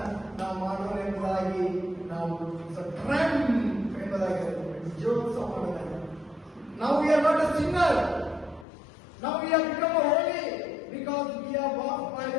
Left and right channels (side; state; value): right; drops out; at 8.7 s